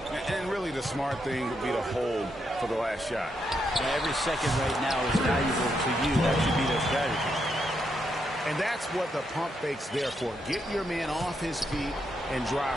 And really the smart thing would be to hold for the last shot. And every second right now is valuable to you. That should be their strategy. And that's what the pump fake's there for. Get your man off his feet and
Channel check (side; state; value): both; normal; correlation 0.80